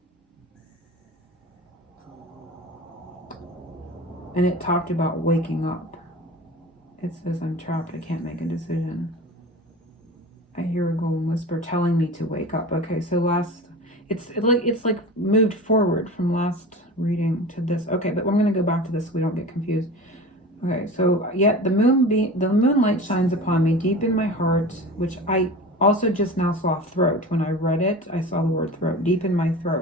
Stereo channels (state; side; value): normal; both; correlation 0.34